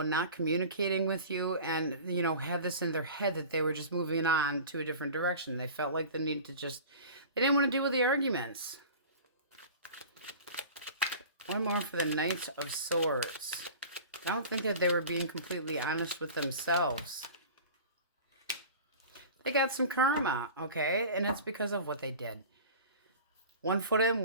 not communicating with you, and, you know, had this in their head that they were just moving on to a different direction. They felt like the need to just, they didn't want to deal with the arguments. One more for the Knight of Swords. I don't think that they were being completely honest with themselves. They got some karma, okay? And it's because of what they did. 1 foot in,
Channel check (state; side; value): inverted; both; correlation -0.38